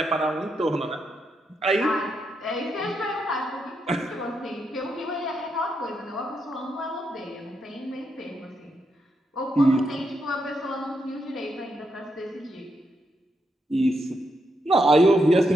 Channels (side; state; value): both; normal; correlation 0.81